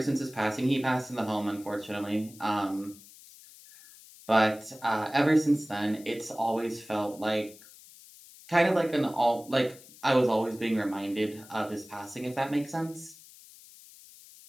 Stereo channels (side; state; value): left; noise; hiss, 21 dB below the sound